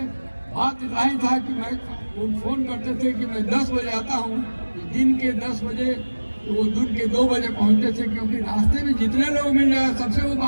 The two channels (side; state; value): both; inverted; correlation -1.00